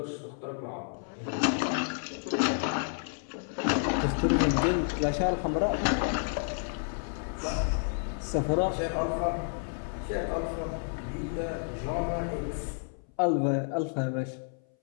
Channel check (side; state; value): right; silent; 58 dB below the other